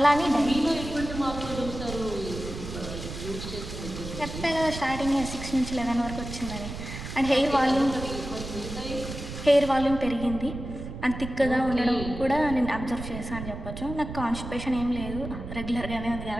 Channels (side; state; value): right; noise; rumble, 9 dB below the sound